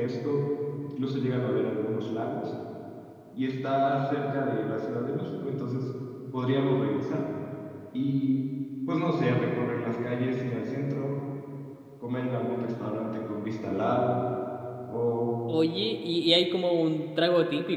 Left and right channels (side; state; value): both; identical; correlation 1.00